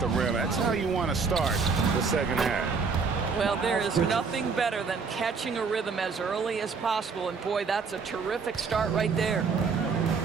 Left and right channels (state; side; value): quieter; left; 5.1 dB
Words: rim. That's how you want to start the second half. Well, there is nothing better than catching a rhythm as early as possible. And boy, that's a terrific start right there.